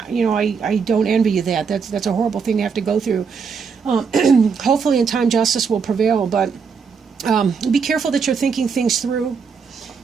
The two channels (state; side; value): quieter; left; 5.8 dB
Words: you know, I don't envy you that. That's a horrible thing to have to go through. Hopefully in time justice will prevail, but be careful that you're thinking things through.